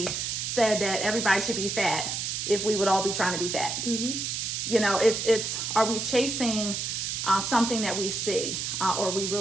said that everybody should be fat, if we would all be trying to be fat. You know, it's are we chasing something that we see, or are we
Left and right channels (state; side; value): noise; right; hiss, 2 dB below the sound